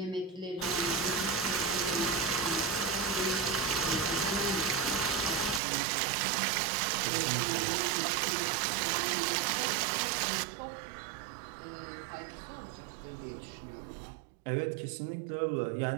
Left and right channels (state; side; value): drops out; left; at 5.6 s